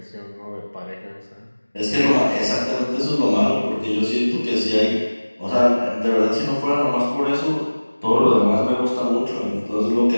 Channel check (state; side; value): inverted; both; correlation -1.00